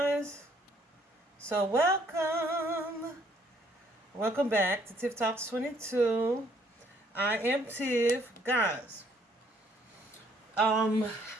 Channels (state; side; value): normal; both; correlation 0.65